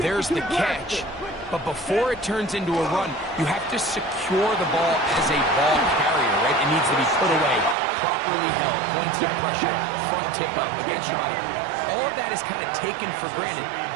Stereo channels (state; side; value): drops out; left; at 7.8 s